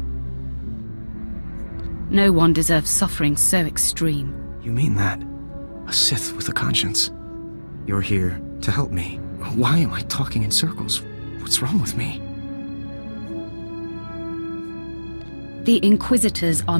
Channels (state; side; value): inverted; both; correlation -1.00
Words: No one deserves suffering so extreme. You mean that? A Sith with a conscience. You're here to help me. Why am I talking in circles? What's wrong with me? The Inquisitors are